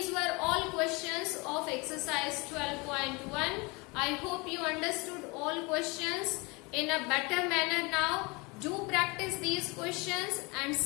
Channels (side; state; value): right; quieter; 27.2 dB